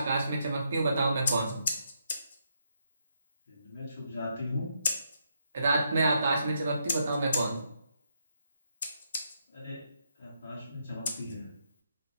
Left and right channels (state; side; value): inverted; both; correlation -0.78